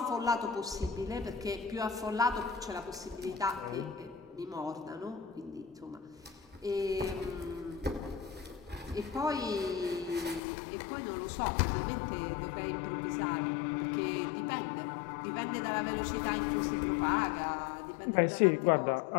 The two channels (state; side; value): drops out; right; at 10.4 s